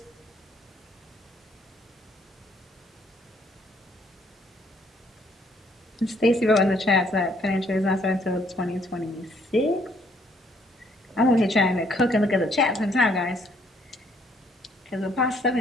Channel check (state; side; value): normal; both; correlation 0.66